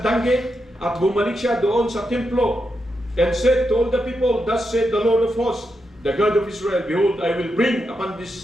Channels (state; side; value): normal; both; correlation 0.85